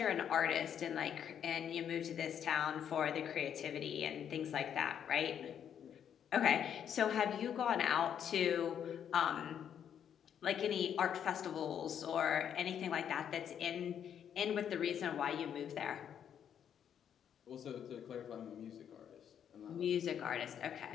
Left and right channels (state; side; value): quieter; right; 8.8 dB